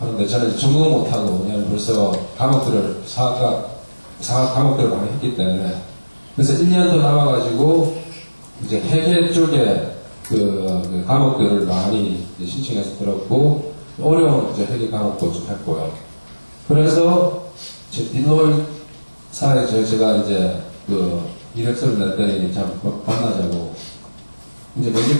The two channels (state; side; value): inverted; both; correlation -1.00